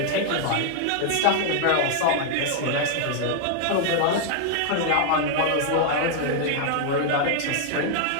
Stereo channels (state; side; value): different; both; correlation 0.00